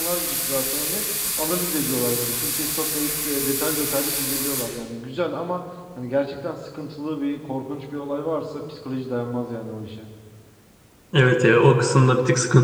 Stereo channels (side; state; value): both; identical; correlation 1.00